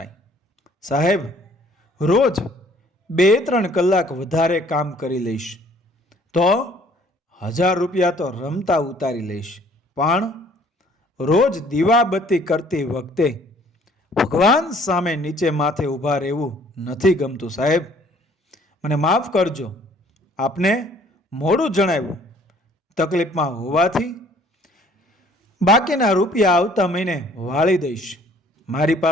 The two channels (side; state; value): both; normal; correlation 0.57